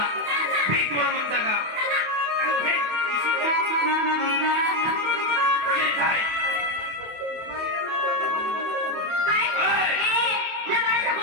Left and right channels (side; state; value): left; late; 28 ms